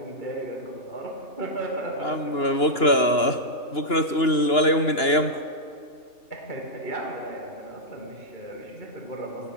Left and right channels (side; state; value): right; late; 2.9 ms